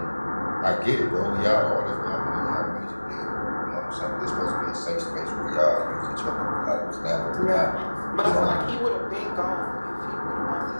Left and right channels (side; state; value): both; inverted; correlation -1.00